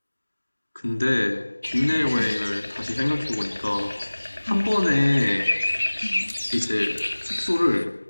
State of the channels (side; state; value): both; inverted; correlation -1.00